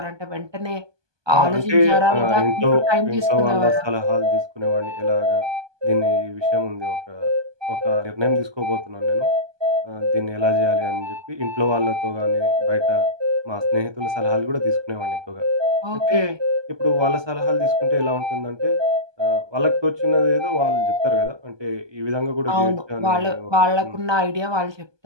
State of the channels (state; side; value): late; left; 1.2 ms